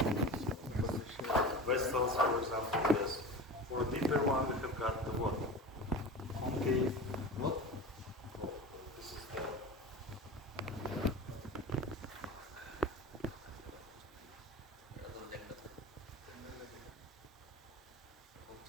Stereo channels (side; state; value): both; normal; correlation 0.32